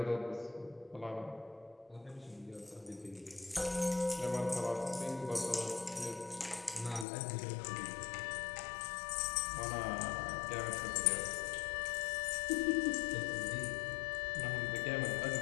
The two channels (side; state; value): right; drops out; at 7.1 s